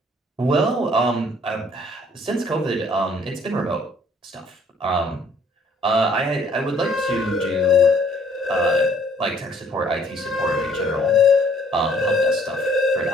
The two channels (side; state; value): both; normal; correlation 0.60